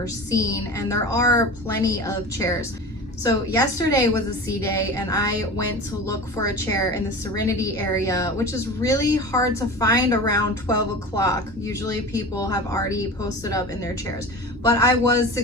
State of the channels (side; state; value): both; normal; correlation 0.33